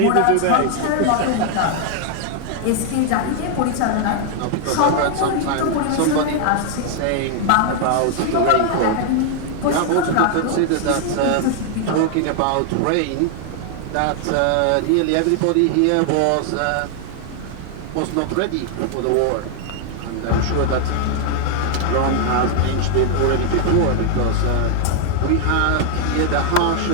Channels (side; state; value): both; different; correlation 0.00